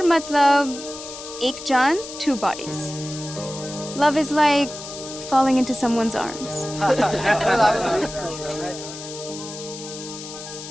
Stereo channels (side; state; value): left; noise; hiss, 12 dB below the sound